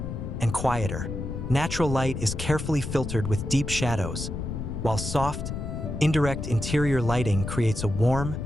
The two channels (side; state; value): left; noise; rumble, 5 dB below the sound